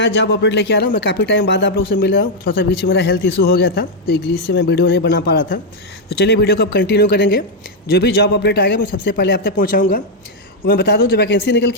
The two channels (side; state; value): both; normal; correlation -0.01